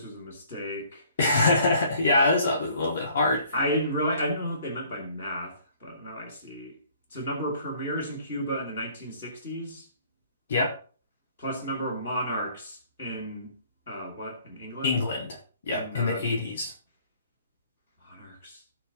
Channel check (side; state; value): both; inverted; correlation -0.58